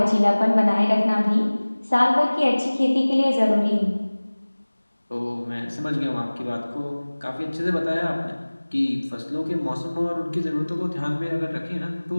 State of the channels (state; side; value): inverted; both; correlation -1.00